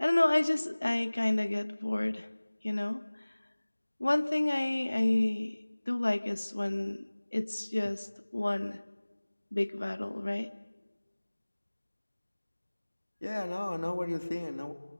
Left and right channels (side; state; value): both; inverted; correlation -1.00